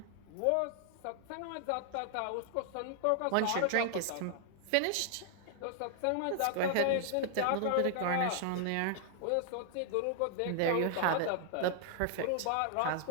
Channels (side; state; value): both; different; correlation 0.00